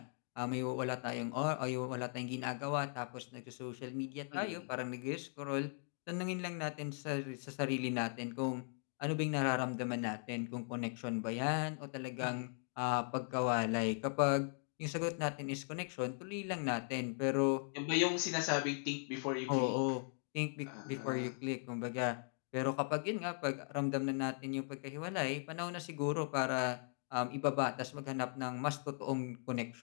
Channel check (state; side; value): silent; right; 52 dB below the other